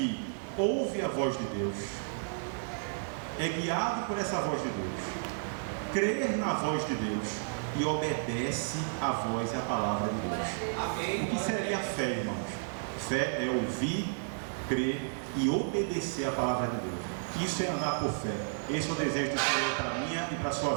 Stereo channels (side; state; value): left; silent; 56 dB below the other